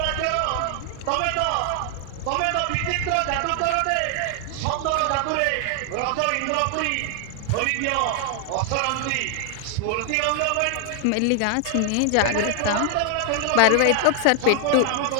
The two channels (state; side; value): different; both; correlation 0.00